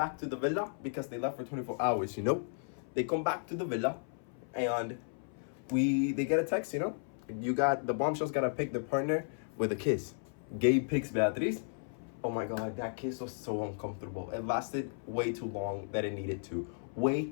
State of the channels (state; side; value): silent; right; 55 dB below the other